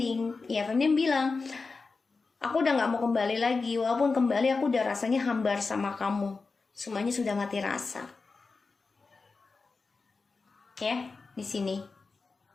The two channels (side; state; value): right; quieter; 4.2 dB